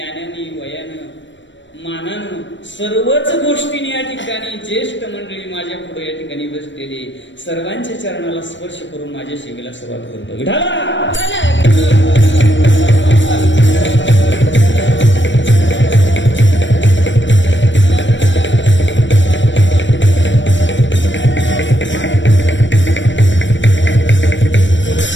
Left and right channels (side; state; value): right; late; 0.54 ms